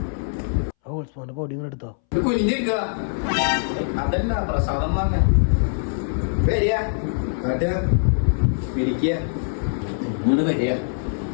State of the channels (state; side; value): silent; right; 63 dB below the other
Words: പൊടി ഇങ്ങനെ എടുത്തോ. കുഞ്ഞിരിക്ക. അതല്ല പ്രസാദം വാങ്ങ. വരിക വരിക.